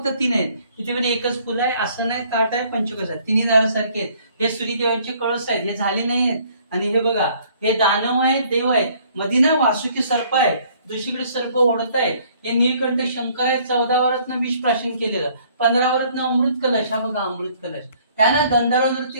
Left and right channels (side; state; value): both; inverted; correlation -0.60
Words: 3 आहेत, तिथे पण एकच फुलं आहे, असं नाही, ताट आहे, पंचकस आहे, तिन्ही दार सारखे आहेत. हे सूर्यदेवांचे कळस आहेत, हे झाले नाही आहेत. आणि हे बघा, हे दानव आहेत, देव आहेत, मध्ये ना वासुकी सर्प आहे, दुसरीकडे सर्प ओढत आहे. हे नीलकंठ शंकर आहे, 14 वरातनं विष प्राशन केलेलं, 15 वरातनं अमृत कलश. हा बघा अमृत कलश. त्याला गंधर्व नृत्य